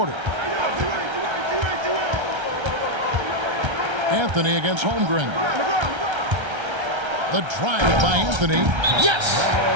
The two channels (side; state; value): left; late; 1.3 ms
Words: Anthony against Holmgren. The drive by Anthony. Yes!